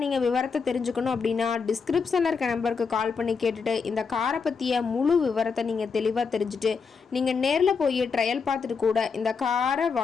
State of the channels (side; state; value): right; quieter; 5.4 dB